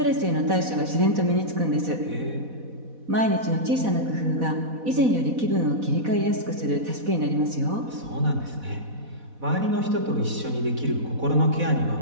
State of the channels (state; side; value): late; left; 4.1 ms